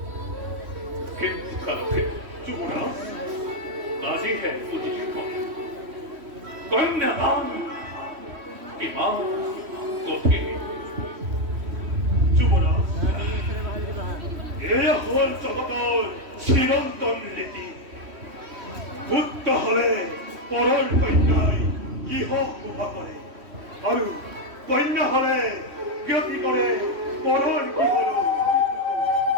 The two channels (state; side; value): late; left; 3.1 ms